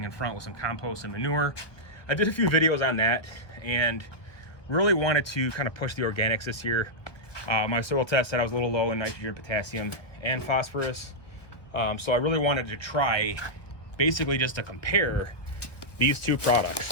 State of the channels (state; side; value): late; right; 1.0 ms